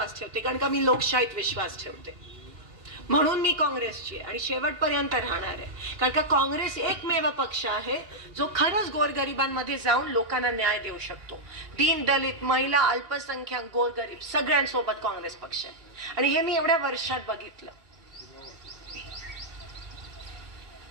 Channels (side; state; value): left; late; 2.8 ms